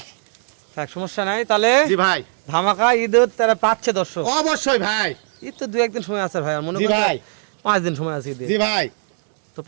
থাক সমস্যা নাই তাহলে জি ভাই ধামাকা ঈদের তারা পাচ্ছে দর্শক অবশ্যই ভাই ঈদ তো দু একদিন সময় আছে ভাই আর মনে জি করেন ভাই 5 দিন সময় আছে ঈদের জি ভাই তো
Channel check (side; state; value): left; silent; digital silence